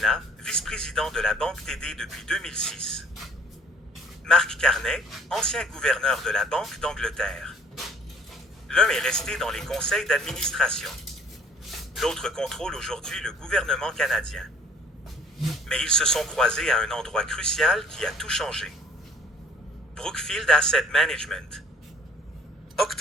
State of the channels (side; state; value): both; normal; correlation 0.56